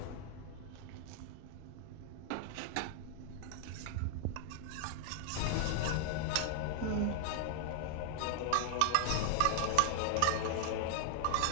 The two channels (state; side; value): different; both; correlation 0.00